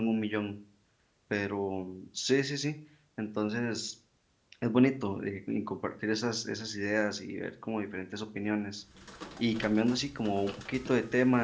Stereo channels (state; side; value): identical; both; correlation 1.00